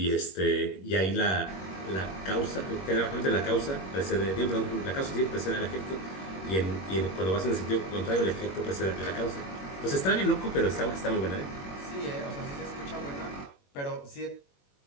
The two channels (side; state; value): right; late; 21 ms